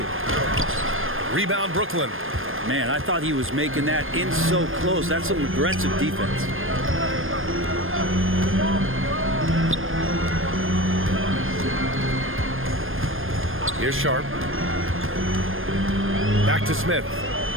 Rebound Brooklyn. Man, I thought he was making that in so close. That's some aggressive defense. Here's Sharp. Back to Smith.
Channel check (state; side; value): late; left; 0.59 ms